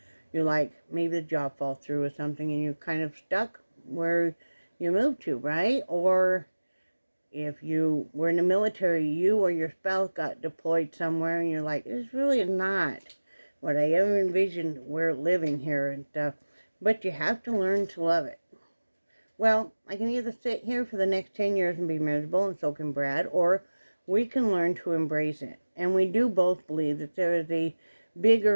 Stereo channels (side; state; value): both; inverted; correlation -1.00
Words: you're like, maybe the job falls through or something and you're kind of stuck where you moved to, right? Or if you were in the military, you or your spouse got deployed somewhere and you're like, this really is not what I ever envisioned we're living here and stuff. But you have to learn to love it. Well, I can either sit here for the next 10 years and be miserable, and so can Brad, or we can learn to embrace it. And we do both believe that there is a